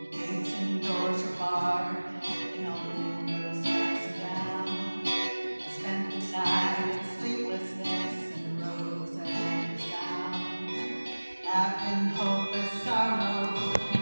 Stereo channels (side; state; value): both; inverted; correlation -1.00